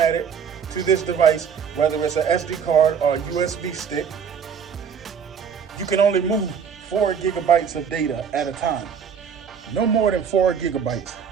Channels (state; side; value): quieter; left; 7.1 dB